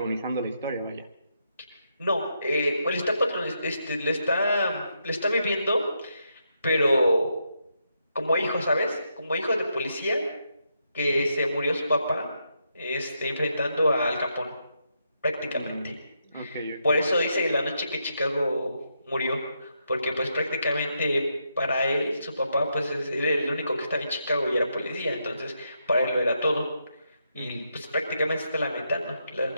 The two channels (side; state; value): both; inverted; correlation -0.81